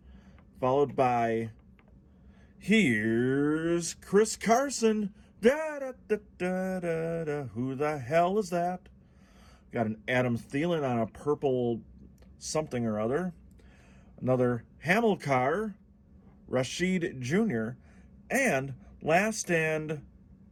followed by, here's Chris Carson. Da-da-da-da-da-da. Who the hell is that? Got an Adam Thielen on a purple something or other. Another Hamilcar Rashed Jr. And last, and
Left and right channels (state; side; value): identical; both; correlation 1.00